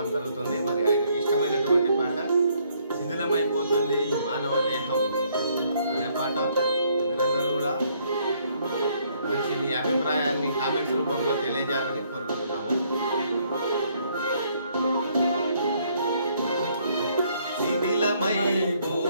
జరుగుతుంది. మరి ఆయనకి ఇష్టమైనటువంటి పాట శిథిలమైపోతుంది మానవ దేహం అనే పాట. మీరందరూ కూడా మంచి మీ అభిప్రాయాన్ని కామెంట్స్ రూపంలో తెలియజేయాలని కోరుకుంటున్నాము. శిథిలమైపోతుంది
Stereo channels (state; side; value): inverted; both; correlation -0.67